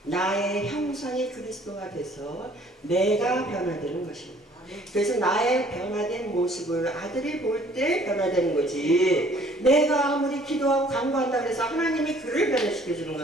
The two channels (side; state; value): both; normal; correlation 0.57